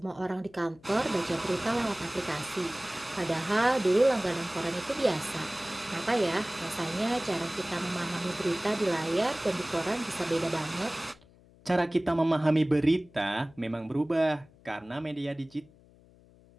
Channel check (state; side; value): noise; left; hum, 27 dB below the sound